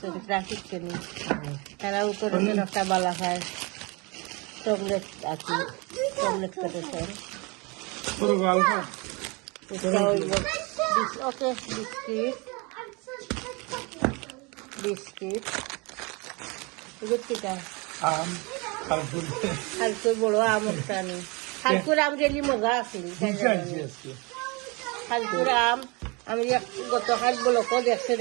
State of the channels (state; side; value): quieter; left; 28.2 dB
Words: ট্রাফিক ট্রেনিং, তারাও করেছেন একটা বালা খায় চকলেট আছে, চকলেট করেছেন। ওকে বিস্কিট বিস্কিট বিস্কিটা হালকুর বড় আম একটা নেই। হালকুর আম রেলি মজা আছিল। হালকুর আম আমি গতকাল ব্লকও দেখছেন,